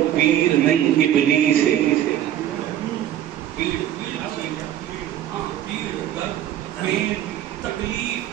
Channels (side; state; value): left; quieter; 11.5 dB